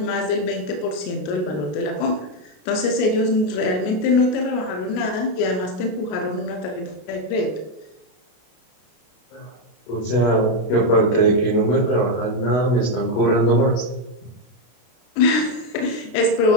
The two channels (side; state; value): right; late; 33 ms